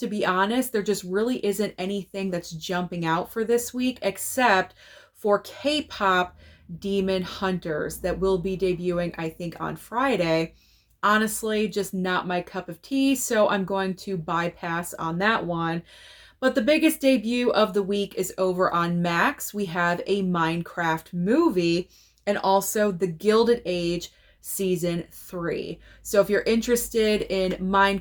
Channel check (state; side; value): identical; both; correlation 1.00